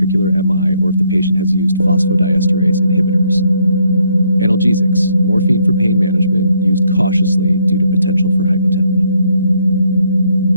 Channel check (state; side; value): inverted; both; correlation -0.71